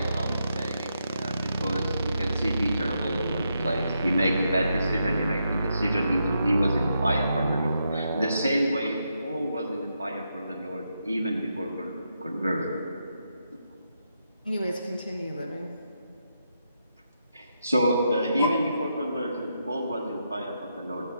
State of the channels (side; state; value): both; inverted; correlation -0.82